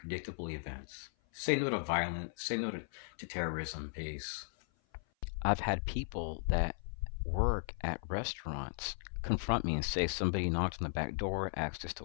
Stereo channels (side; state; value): right; silent; 53 dB below the other